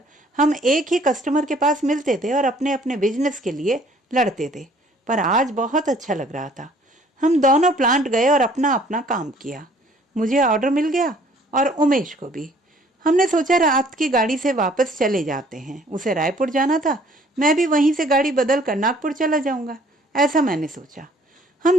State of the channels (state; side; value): normal; both; correlation 0.58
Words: हम एक ही कस्टमर के पास मिलते थे और अपने अपने बिजनेस के लिए लड़ते थे। पर आज बहुत अच्छा लग रहा था। हम दोनों प्लांट गए और अपना अपना काम किया। मुझे ऑर्डर मिल गया और उमेश को भी। हमने सोचा रात की गाड़ी से वापस चले जाते हैं। उसे रायपुर जाना था, मैं भी वहीं से गाड़ी बदल कर नागपुर चला जाऊंगा, ऐसा मैंने सोचा।